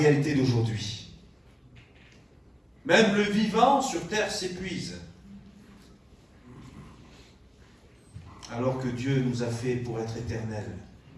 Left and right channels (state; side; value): identical; both; correlation 1.00